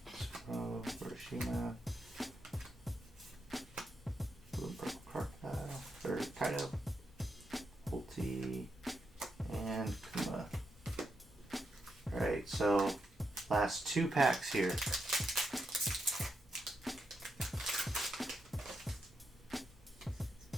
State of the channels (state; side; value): normal; both; correlation 0.83